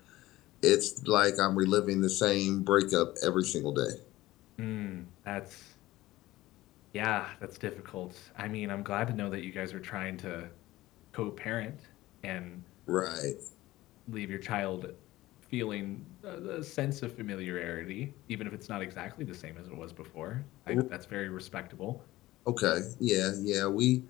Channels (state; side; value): quieter; right; 17.2 dB